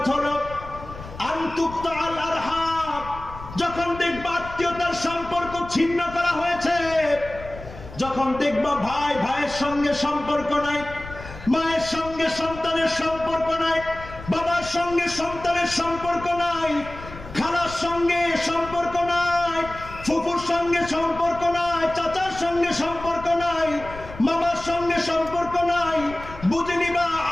হলো আনতুকতাল আরহাম, যখন দেখবা আত্মীয়তার সম্পর্ক ছিন্ন করা হয়েছে, যখন দেখবা ভাই ভাইয়ের সঙ্গে সম্পর্ক নাই, মায়ের সঙ্গে সন্তানের সম্পর্ক নাই, বাবার সঙ্গে সন্তানের সম্পর্ক নাই, খালার সঙ্গে সম্পর্ক নাই, ফুফুর সঙ্গে সম্পর্ক নাই, চাচার সঙ্গে সম্পর্ক নাই, মামার সঙ্গে সম্পর্ক নাই, বুঝে নিবা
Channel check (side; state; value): left; noise; rumble, 14 dB below the sound